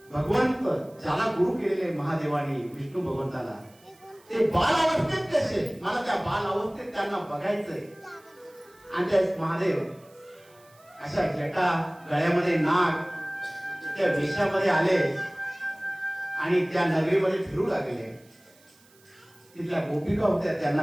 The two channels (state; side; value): noise; right; hiss, 29 dB below the sound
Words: भगवंत ज्याला गुरु केलेले महादेवाने विष्णू भगवंताला ते बाल अवस्थेत कसे, मला त्या बाल अवस्थेत त्यांना बघायचंय. आणि त्या महादेव अशा जटा गळ्यामध्ये नाग त्या वेशामध्ये आले आणि त्या नगरीमध्ये फिरू लागले. तिथल्या गोपिका होत्या,